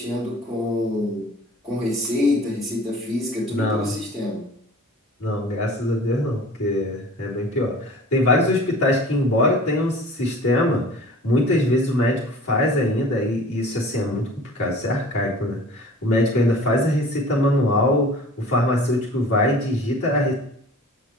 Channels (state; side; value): normal; both; correlation 0.44